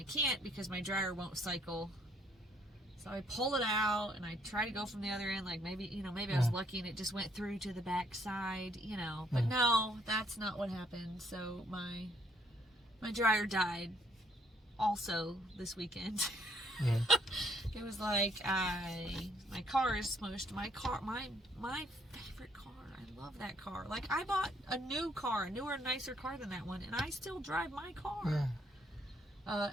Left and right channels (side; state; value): both; normal; correlation 0.67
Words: can't because my dryer won't cycle. So I pull it out, and I try to go from the other end, like maybe I was lucky and it just went through to the back side, but no, that's not what happened. So my dryer died also this weekend. It was like my car is smushed. My favorite car. I love that car. Like, I bought a new car, a newer, nicer car than that one, and I still drive my car.